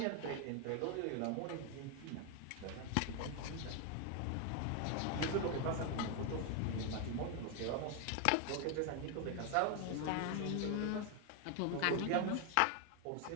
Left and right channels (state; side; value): different; both; correlation 0.01